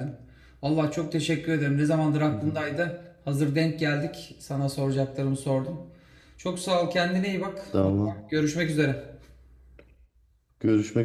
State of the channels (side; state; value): both; identical; correlation 1.00